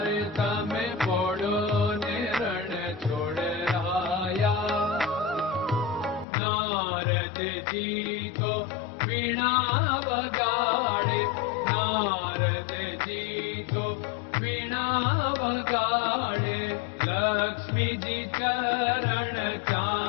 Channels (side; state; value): right; drops out; at 6.2 s